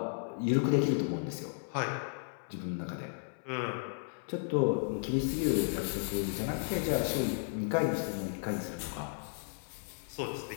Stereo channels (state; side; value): silent; right; 55 dB below the other